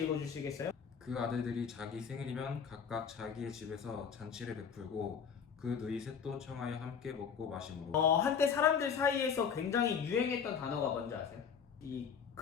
읽어주시겠어요? 그 아들들이 자기 생일이면 각각 자기의 집에서 잔치를 베풀고 그 누이 셋도 청하여 함께 먹고 마심으로. 한때 사람들 사이에서 굉장히 유행했던 단어가 뭔지 아세요? 이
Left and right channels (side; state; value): right; quieter; 7.0 dB